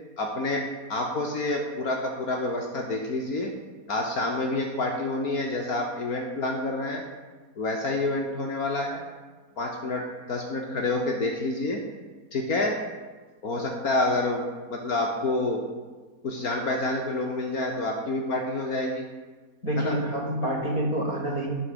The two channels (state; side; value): late; right; 4.3 ms